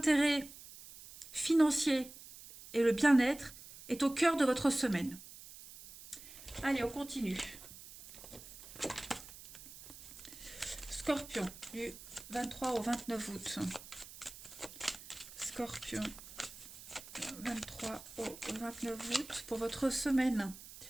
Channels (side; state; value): right; noise; hiss, 16 dB below the sound